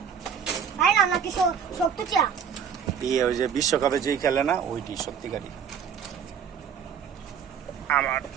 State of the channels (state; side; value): quieter; left; 7.4 dB